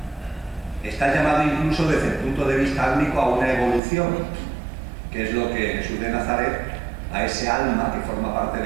Está llamado incluso desde el punto de vista álmico a una evolución, que es lo que Jesús de Nazaret, a ese alma que forma parte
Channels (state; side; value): drops out; left; at 3.8 s